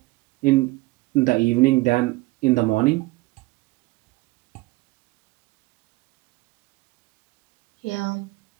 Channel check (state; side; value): quieter; left; 21.4 dB